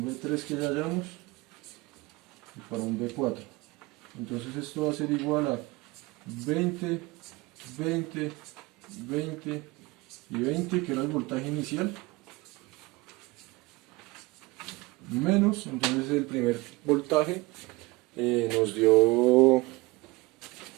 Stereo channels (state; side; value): quieter; left; 22.3 dB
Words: B3 que ya hallamos, y para un B4. Entonces esto va a ser igual a 20, 20 20 y 20, que era el voltaje inicial, menos, entonces el primer voltaje nos dio, el